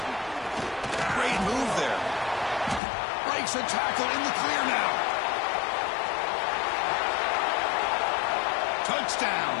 Great move there. Breaks a tackle in the clear now. Touchdown,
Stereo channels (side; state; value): right; drops out; at 2.8 s